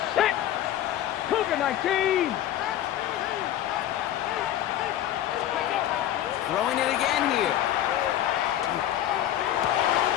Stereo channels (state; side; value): quieter; right; 12.1 dB